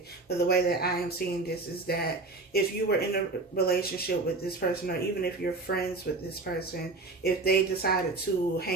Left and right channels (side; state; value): left; quieter; 3.4 dB